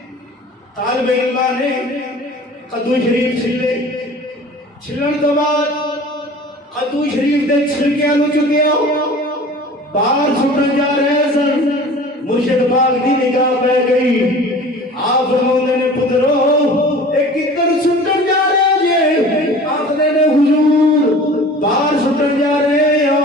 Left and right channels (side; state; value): both; normal; correlation 0.42